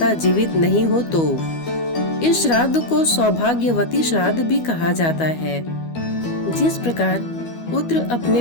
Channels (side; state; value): right; late; 12 ms